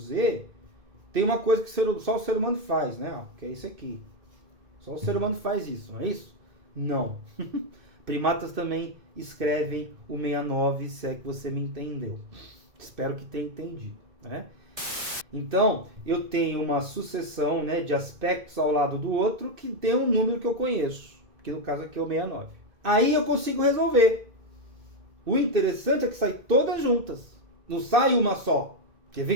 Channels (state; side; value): late; left; 2.6 ms